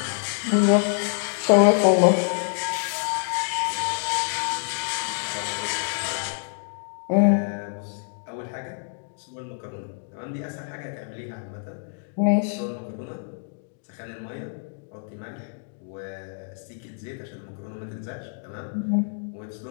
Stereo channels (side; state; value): right; silent; digital silence